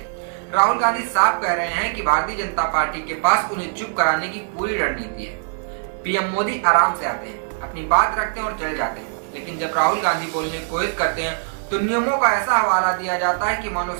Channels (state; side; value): silent; left; 64 dB below the other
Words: राहुल गांधी साफ कह रहे हैं कि भारतीय जनता पार्टी के पास उन्हें चुप कराने की पूरी रणनीति है। पीएम मोदी आराम से आते हैं, अपनी बात रखते हैं और चले जाते हैं, लेकिन जब राहुल गांधी बोलने की कोशिश करते हैं तो नियमों का ऐसा हवाला दिया जाता है कि मानो